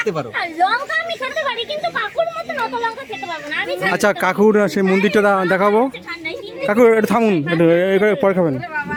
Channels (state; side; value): identical; both; correlation 1.00